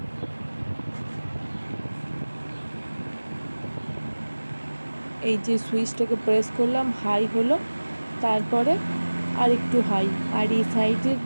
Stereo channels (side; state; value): both; inverted; correlation -1.00